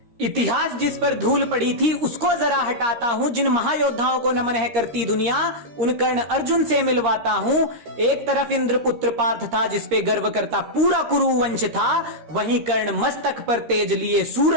इतिहास जिस पर धूल पड़ी थी उसको जरा हटाता हूँ। जिन महायोद्धाओं को नमन है करती दुनिया, उन कर्ण अर्जुन से मिलवाता हूँ। एक तरफ इंद्रपुत्र पार्थ था जिस पे गर्व करता पूरा कुरु वंश था, वहीं कर्ण मस्तक पर तेज लिए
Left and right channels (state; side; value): late; left; 13 ms